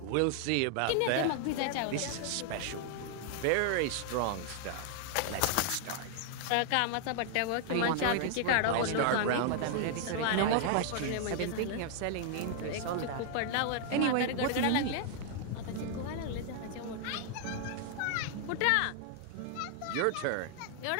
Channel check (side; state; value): both; different; correlation 0.00